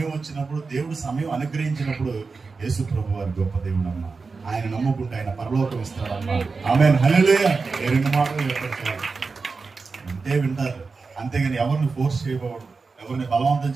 వచ్చినప్పుడు, దేవుడు సమయం అనుగ్రహించినప్పుడు, యేసు ప్రభు వారి గొప్ప దేవుడు అమ్మా, ఆయన నమ్ముకుంటే ఆయన పరలోకం ఇస్తాడమ్మా. ఆమేన్, హల్లెలూయా. 2 మాటలు చెప్పారు, అంతే వింటారు. అంతేగాని ఎవరిని ఫోర్స్ చేయకూడదు, ఎవరిని బలవంతం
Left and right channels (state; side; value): quieter; left; 4.4 dB